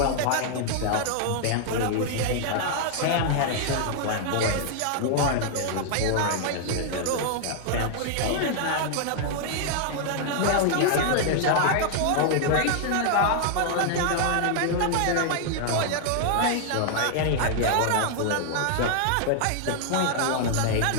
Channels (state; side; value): different; both; correlation -0.01